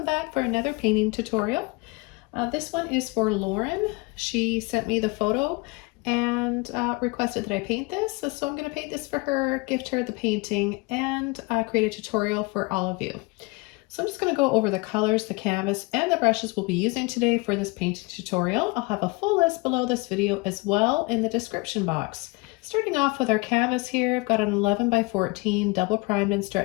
back for another painting tutorial. This one is for Lauren. She sent me the photo and requested that I paint this. So I'm going to paint this for her, gift her the painting, and create a tutorial for all of you. So I'm just going to go over the colors, the canvas, and the brushes we'll be using today for this painting tutorial. I'll have a full list below this video as well in the description box. Starting off with our canvas here, I've got an 11 by 14 double primed and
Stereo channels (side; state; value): right; quieter; 26.5 dB